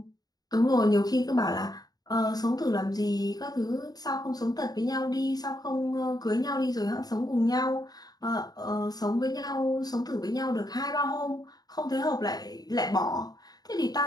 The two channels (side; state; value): right; late; 0.19 ms